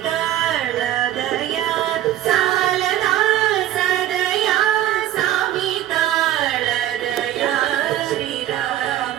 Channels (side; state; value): left; quieter; 12.9 dB